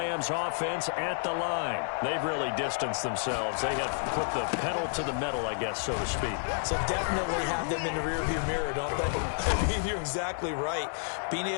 offense at the line. They've really distanced themselves. They have put the pedal to the metal, I guess, so to speak. So definitely have them in the rearview mirror, don't they? I mean, you're exactly right. Being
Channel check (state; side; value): silent; right; 58 dB below the other